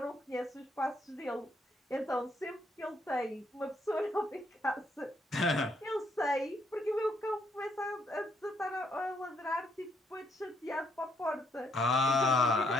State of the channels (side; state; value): both; normal; correlation 0.73